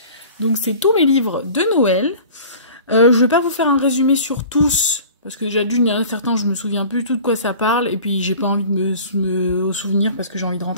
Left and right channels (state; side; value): inverted; both; correlation -0.43